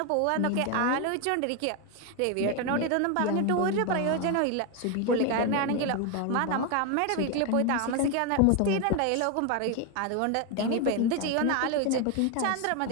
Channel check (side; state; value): both; different; correlation 0.01